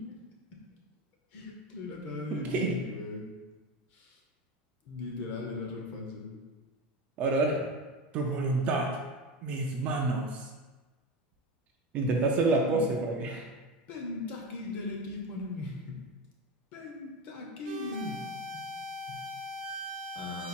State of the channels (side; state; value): both; normal; correlation 0.22